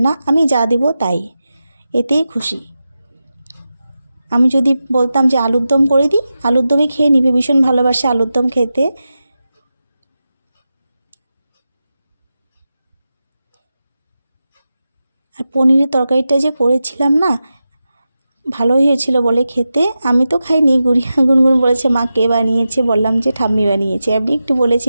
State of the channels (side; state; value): both; inverted; correlation -0.92